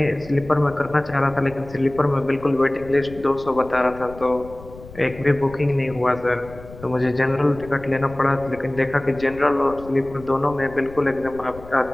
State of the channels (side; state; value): left; noise; rumble, 17 dB below the sound